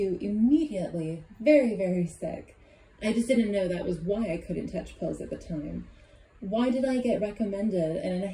immediately very, very sick. I just didn't know that was why I couldn't touch pills at the time. Why did I get recommended an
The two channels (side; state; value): both; identical; correlation 1.00